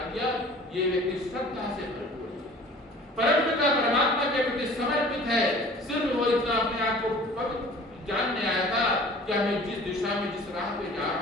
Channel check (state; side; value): normal; both; correlation 0.47